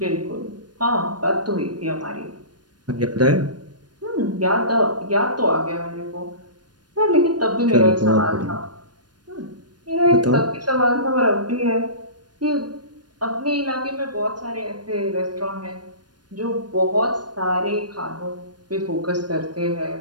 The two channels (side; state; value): left; late; 0.70 ms